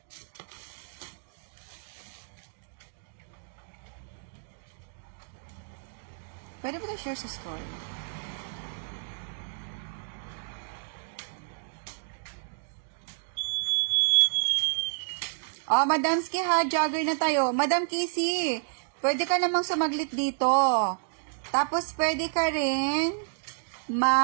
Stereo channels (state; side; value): silent; left; digital silence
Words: Pwede ba na-share sa story? Madamski ha, jogger na tayo. Madam Kissy, pwede ka namang sumaglit dito. Tapos, pwede ka rin